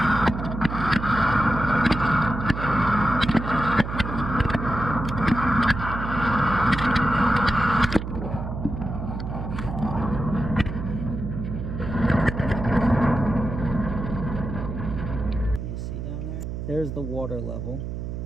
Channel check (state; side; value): noise; right; hum, 6 dB below the sound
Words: You see down there? There's the water level.